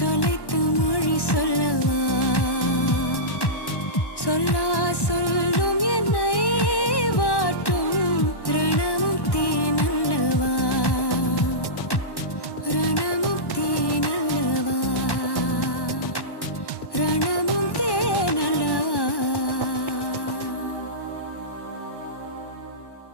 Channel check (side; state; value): right; late; 1.1 ms